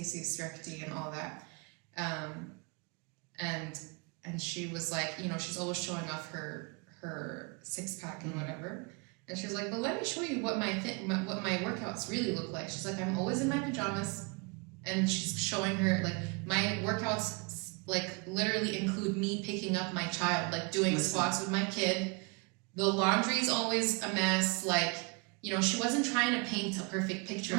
recti and all that. And she was like, she's always showing off her 6-pack and whatever. And she was like, but let me show you what my workouts really look like. She's like, I'm always in my pajamas. And she's showing her, like, my workouts, like, literally include me picking up my child, like, doing squats with my kid. The laundry's always a mess. Like, she wasn't trying to paint a perfect picture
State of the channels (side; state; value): left; quieter; 31.1 dB